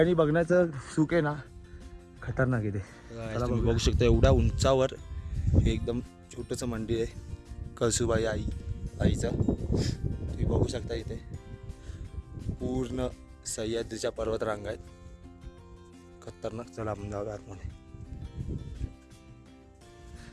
बघण्याचं सुख आहे ना, खतरनाक आहे ते. तुम्ही बघू शकता एवढ्या उंचावर हे एकदम छोटंसं मंदिर आहे कळसूबाई आईचं. तुम्ही बघू शकता इथे पूर्ण सह्याद्रीच्या पर्वत रांगा आहेत, खतरनाक. चला आपण जाऊया आतमध्ये.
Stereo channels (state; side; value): identical; both; correlation 1.00